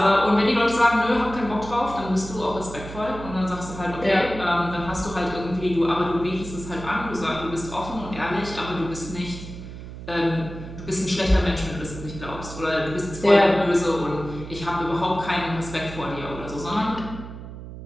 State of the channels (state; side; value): noise; right; hum, 12 dB below the sound